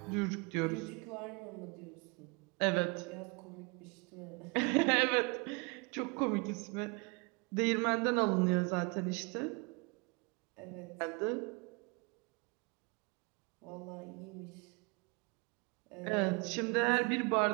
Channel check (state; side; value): quieter; left; 30.4 dB